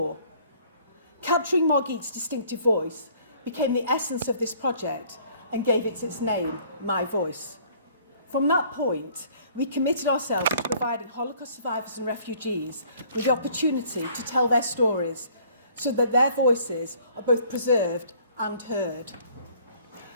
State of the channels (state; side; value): inverted; both; correlation -0.57